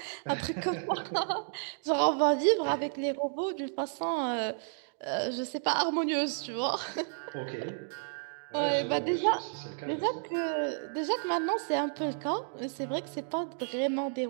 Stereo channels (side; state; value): left; silent; digital silence